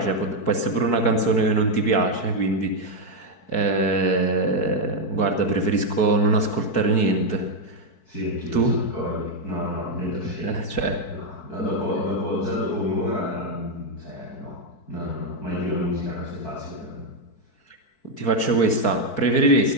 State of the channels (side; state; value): right; late; 4.6 ms